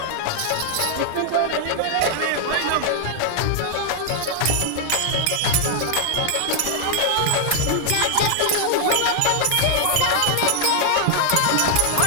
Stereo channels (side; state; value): both; different; correlation 0.00